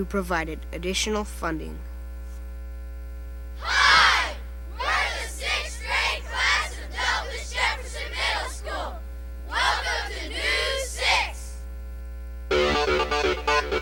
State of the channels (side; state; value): both; identical; correlation 1.00